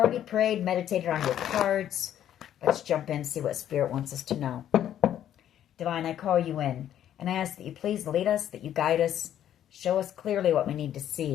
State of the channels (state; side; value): quieter; right; 10.9 dB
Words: prayed, meditated on your cards. Let's jump in and see what Spirit wants us to know. Divine, I call you in, and I ask that you please lead us, that you guide us, show us clearly what we need to